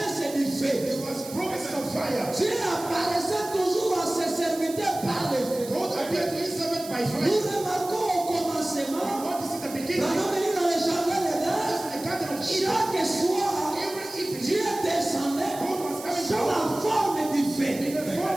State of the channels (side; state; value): right; noise; hiss, 14 dB below the sound